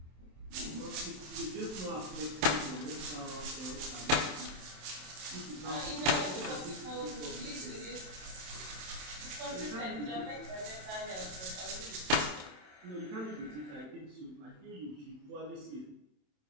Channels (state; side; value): late; left; 27 ms